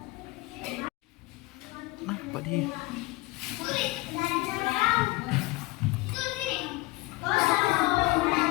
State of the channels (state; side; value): quieter; right; 21.4 dB